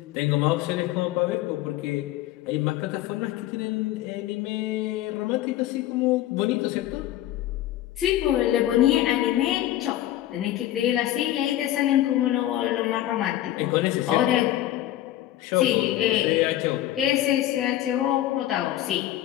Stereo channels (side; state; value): right; quieter; 13.7 dB